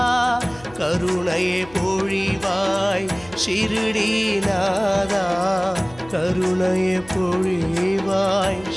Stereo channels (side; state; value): left; noise; hum, 23 dB below the sound